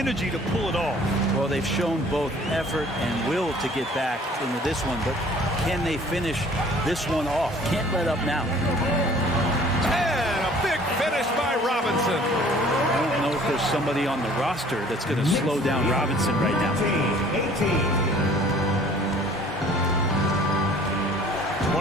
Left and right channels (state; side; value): normal; both; correlation 0.53